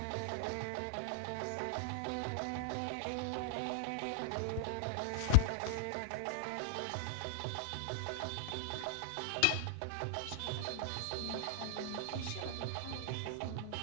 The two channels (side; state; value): both; different; correlation -0.01